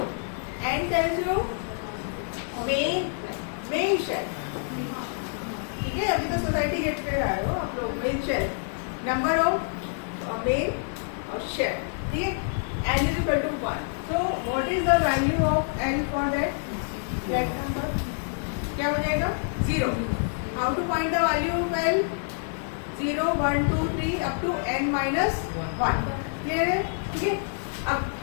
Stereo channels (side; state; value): right; silent; digital silence